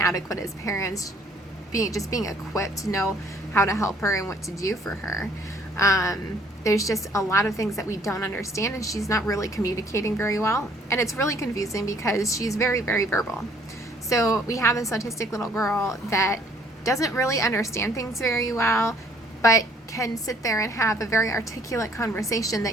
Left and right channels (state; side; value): normal; both; correlation 0.61